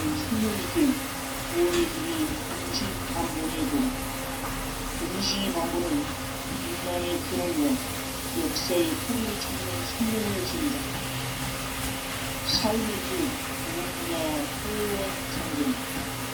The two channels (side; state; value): both; identical; correlation 1.00